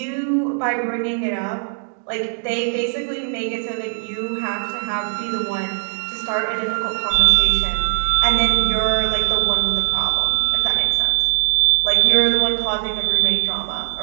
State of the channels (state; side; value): silent; left; digital silence